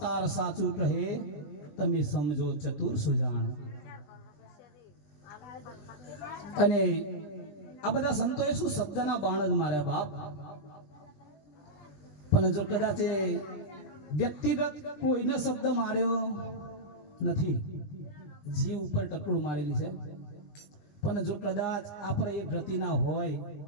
સાચું કહે, તમે સમજો ચતુર સુજાણ. અને આ બધા સંતોએ શું શબ્દના બાણ જ માર્યા બાપ. પણ જો કદાચ વ્યક્તિગત કોઈને શબ્દ માર્યો નથી, જીવ ઉપર ટકડું મારેલી છે. પણ જો કદાચ આપણે એ ગતિના હોય,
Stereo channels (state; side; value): late; right; 20 ms